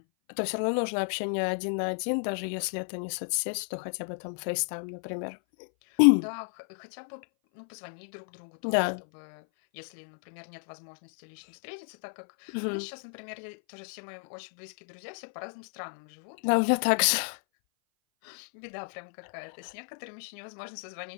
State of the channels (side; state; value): right; silent; 57 dB below the other